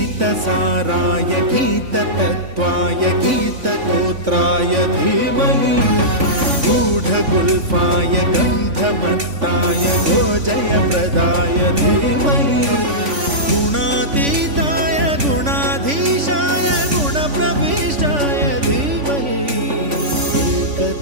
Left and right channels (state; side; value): late; left; 3.5 ms